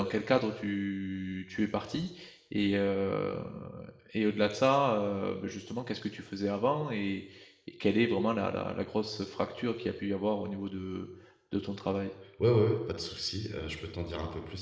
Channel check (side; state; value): both; identical; correlation 1.00